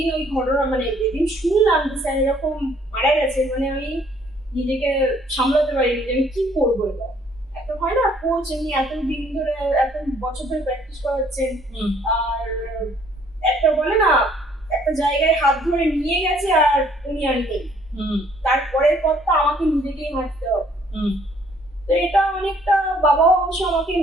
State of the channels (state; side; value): normal; both; correlation 0.62